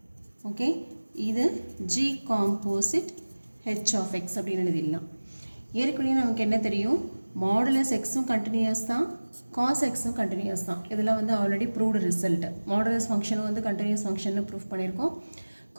Okay, இது g composite h of x அப்படின்னு எழுதிடலாம். ஏற்கனவே நமக்கு என்ன தெரியும், மாடுலஸ் எக்ஸும் கண்டினியூஸ் தான், காஸ் எக்ஸும் கண்டினியூஸ் தான். இதெல்லாம் வந்து ஆல்ரெடி ப்ரூவ்டு ரிசல்ட். மாடுலஸ் ஃபங்க்ஷனும் வந்து கண்டினியூஸ் ஃபங்க்ஷன்னு ப்ரூவ் பண்ணியிருக்கோம்,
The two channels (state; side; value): inverted; both; correlation -1.00